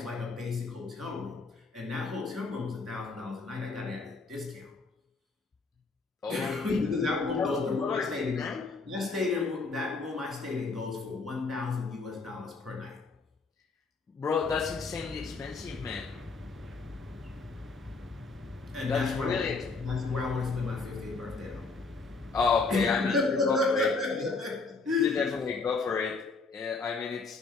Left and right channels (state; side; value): quieter; right; 4.1 dB